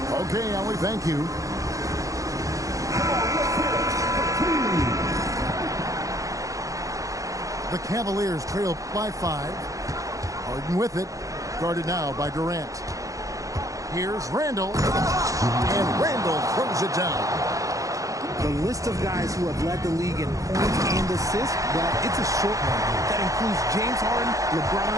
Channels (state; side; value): late; left; 0.16 ms